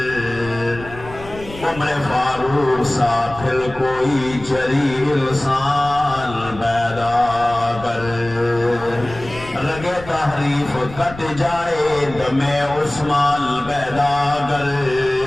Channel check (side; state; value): left; noise; rumble, 15 dB below the sound